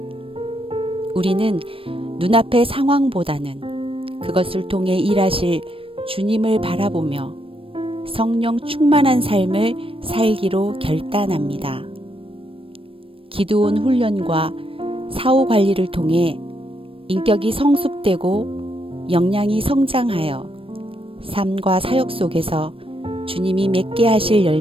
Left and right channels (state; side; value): late; left; 0.26 ms